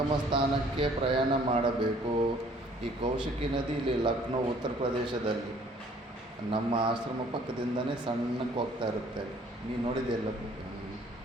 ಸ್ಥಾನಕ್ಕೆ ಪ್ರಯಾಣ ಮಾಡಬೇಕು. ಈ ಕೌಶಿಕಿ ನದಿ ಇಲ್ಲಿ ಲಕ್ನೋ, ಉತ್ತರ ಪ್ರದೇಶದಲ್ಲಿ ನಮ್ಮ ಆಶ್ರಮ ಪಕ್ಕದಿಂದನೇ ಸಣ್ಣಕ್ಕೆ ಹೋಗ್ತಾ ಇರುತ್ತೆ. ನೀವು ನೋಡಿದೆಯಲ್ಲ.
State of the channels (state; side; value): normal; both; correlation 0.57